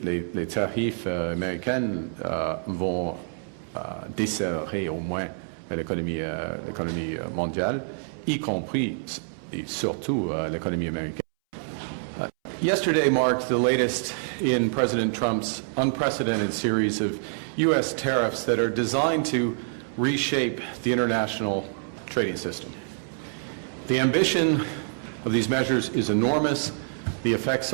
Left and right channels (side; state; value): left; silent; 60 dB below the other